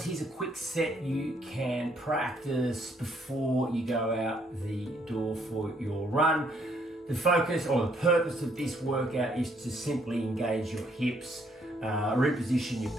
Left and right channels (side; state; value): both; normal; correlation 0.69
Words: here's a quick set you can practice before you go out the door for your run. The focus or the purpose of this workout is to simply engage your hips, reposition your